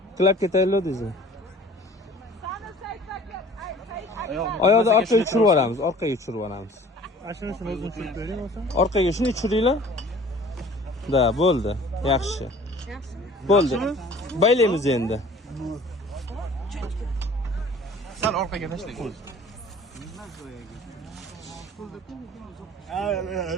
Qilib ketaylik deysiz. Oyoqni orqaga tushirib yuboramiz, orqaga tushirib yuboramiz. Ashunisini o'zim tushirib bering bo'lsa. Orqaga shuni tushiringlar. Da, bo'ldi. Yaxshi. Yaxshimi? Bo'ldi. Baylaymiz endi. Sal orqaga tashlang.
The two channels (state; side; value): normal; both; correlation 0.49